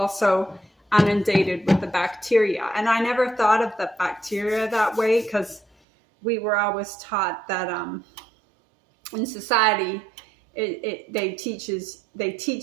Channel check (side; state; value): left; drops out; at 5.7 s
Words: inundated with the bacteria. And I never thought of the bacteria that way, because we were always taught that in society, they teach